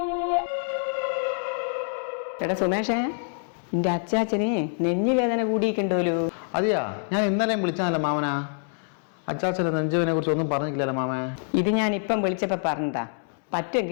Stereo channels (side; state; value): right; silent; digital silence